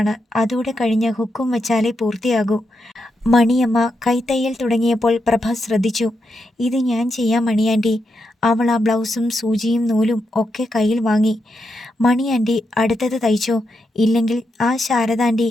അതോടെ കഴിഞ്ഞ് ഹുക്കും വെച്ചാലേ പൂർത്തിയാകൂ. മണിയമ്മ കൈത്തയ്യൽ തുടങ്ങിയപ്പോൾ പ്രഭ ശ്രദ്ധിച്ചു. ഇത് ഞാൻ ചെയ്യാം മണിയാൻറ്റി. അവൾ ആ ബ്ലൗസും സൂചിയും നൂലും ഒക്കെ കയ്യിൽ വാങ്ങി. മണിയാൻറ്റി അടുത്തത് തയ്ച്ചോ, ഇല്ലെങ്കിൽ ആ ശാരദാൻറ്റി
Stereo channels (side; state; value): both; normal; correlation 0.84